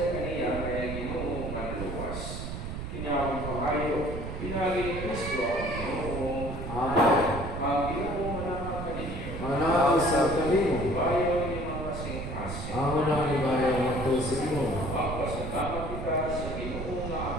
kaniya kaya Ginoo manluwas. Kinawang pakayo, pinagi ni Kristo ang Ginoo. Amen. Ang Ginoo manama kaninyo. Manaw sa kanimo. Bayo ni mga kasing-kasing. Amo na ibayaw ng tulsi mo. Magpasalamat kita sa Ginoo nga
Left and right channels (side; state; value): right; noise; rumble, 6 dB below the sound